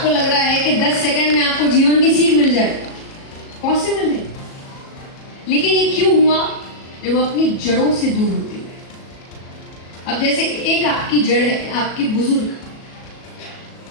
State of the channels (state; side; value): late; right; 37 ms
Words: लग रहा है कि 10 सेकंड में आपको जीवन की सीख मिल जाए, पॉसिबल है। लेकिन ये क्यों हुआ? जब वो अपनी जड़ों से दूर होते गए। अब जैसे एक आपकी जड़ है, आपके बुजुर्ग।